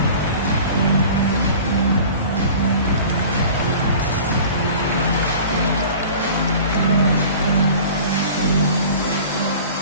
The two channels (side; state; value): both; inverted; correlation -0.42